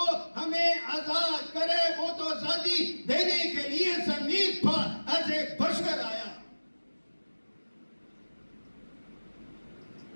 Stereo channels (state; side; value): inverted; both; correlation -1.00